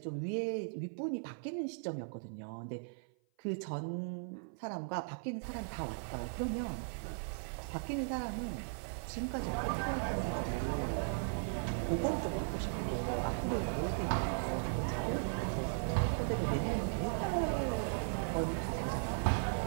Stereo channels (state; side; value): silent; left; 53 dB below the other